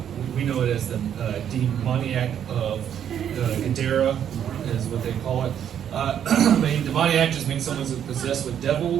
we know it as the demoniac of Gadera, is what they call it. Demoniac just means someone's possessed with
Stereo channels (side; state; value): left; quieter; 9.3 dB